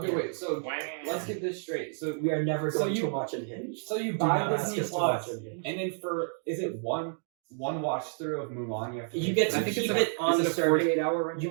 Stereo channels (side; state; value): left; silent; digital silence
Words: wait. So let's get this straight. So We are never So going you- to watch Unhinged. so you Do buy not ask Disney us to Plus, watch Unhinged. and then for is it one watch through of Mulan? You have to. You pay get for? to I think keep it's it on is the it a service. 48-hour rental. You